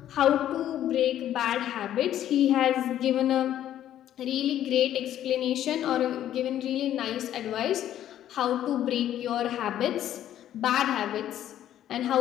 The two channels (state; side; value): quieter; right; 11.6 dB